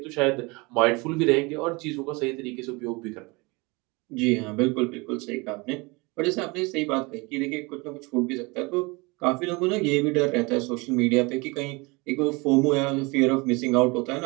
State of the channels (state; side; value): quieter; left; 26.3 dB